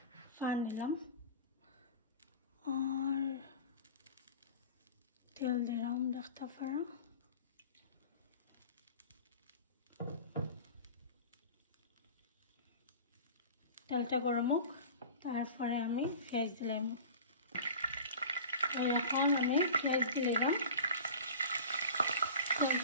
ফান নিলাম আর তেল দিলাম দেখতে পারা। তেলটা গরম হোক, তারপরে আমি পেঁয়াজ দিলাম। এখন আমি পেঁয়াজ দিলাম,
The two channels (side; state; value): both; inverted; correlation -0.37